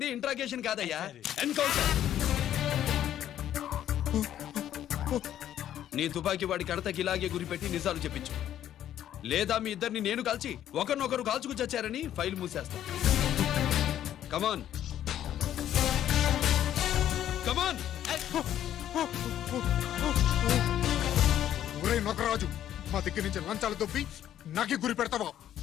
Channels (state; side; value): quieter; right; 11.3 dB